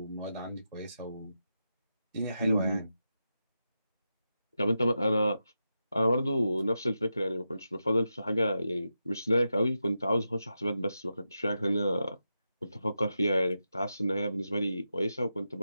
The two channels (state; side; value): inverted; both; correlation -0.88